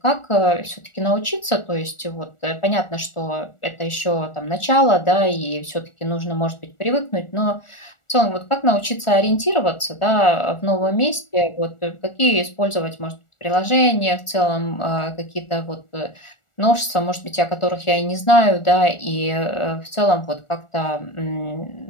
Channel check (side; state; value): right; late; 1.4 ms